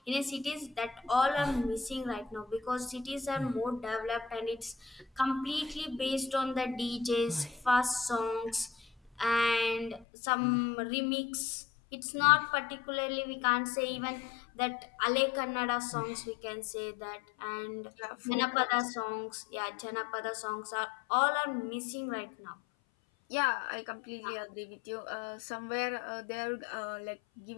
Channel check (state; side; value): drops out; right; at 10.1 s